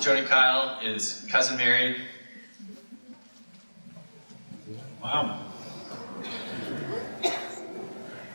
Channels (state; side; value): inverted; both; correlation -1.00